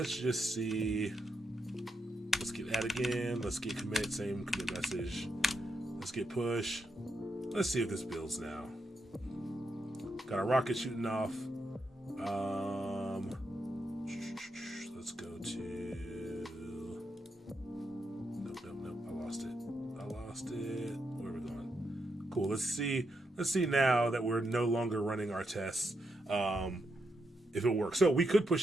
just see. Let's get add again. Let's get commit, same commit message. Let's get push. Let's see if this builds now. Got a rocket shooting off. Let's go to... Nope. I lost it. Where are we going? Cool. Let's see now that we're no longer running our tests. If it works. So we could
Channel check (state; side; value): normal; both; correlation 0.83